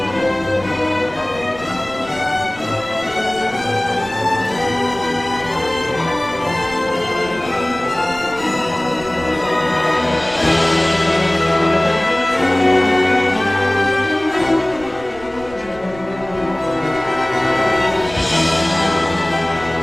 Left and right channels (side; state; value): right; noise; rumble, 19 dB below the sound